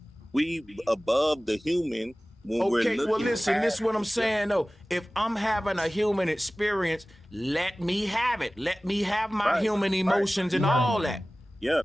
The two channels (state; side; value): normal; both; correlation 0.98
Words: We above the human when we're Okay, looking. well, listen, this is what I'm past saying, though. If I'm having a human experience, let me have it. Let me have my Right, human emotions and all that. Yeah.